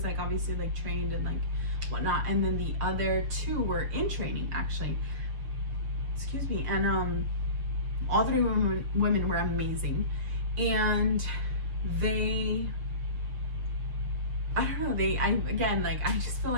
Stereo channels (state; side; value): late; left; 6.5 ms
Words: like obviously like trained and like whatnot, and then the other two were in training actually, excuse me. And all three women were amazing, and they, I don't know, again, like I just feel